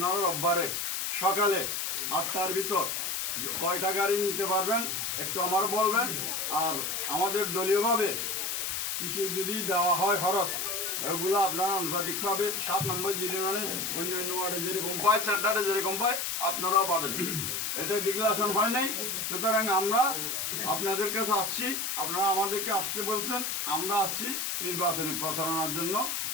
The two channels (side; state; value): left; noise; hiss, 1 dB below the sound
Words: রোববারে সকালে 8টার ভিতর কয়টা গাড়ি নিতে পারবেন একটু আমার বলবেন। আর আমাদের দলীয়ভাবে কিছু যদি দেওয়া হয় খরচ, ওগুলো আপনারা আনুপাতিকভাবে 7 নম্বর ইউনিয়নে অন্য অন্য ওয়ার্ডে যেরকম পায়, সেন্টারে যেরকম পায় আপনারাও পাবেন। এটা ডিক্লারেশন হয় নাই, সুতরাং আমরা আপনাদের কাছে আসছি, আপনারা আমাদেরকে আসতে বলছেন, আমরা আসছি নির্বাচনী প্রচারণার জন্য।